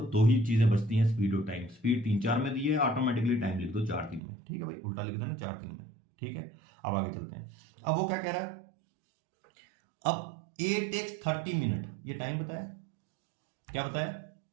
2 ही चीजें बचती हैं, स्पीड और टाइम। स्पीड 3-4 में दी है, ऑटोमेटिकली टाइम लिख दो 4-3 में, ठीक है भाई, उल्टा लिख देना 4-3 में, ठीक है। अब आगे चलते हैं। अब वो क्या कह रहा है, अब ए टेक्स 30 मिनट, ये टाइम बताया, क्या बताया,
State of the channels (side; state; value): left; drops out; at 4.2 s